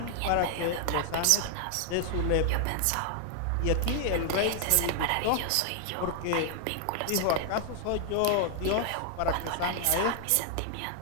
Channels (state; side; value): different; both; correlation 0.00